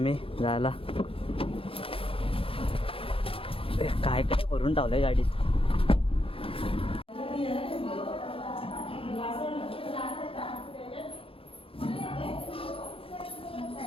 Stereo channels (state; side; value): late; right; 0.27 ms